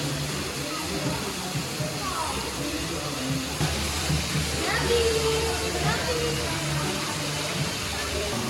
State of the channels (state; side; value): identical; both; correlation 1.00